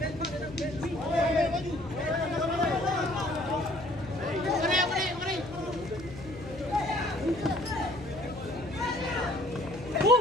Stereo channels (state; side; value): noise; left; hum, 15 dB below the sound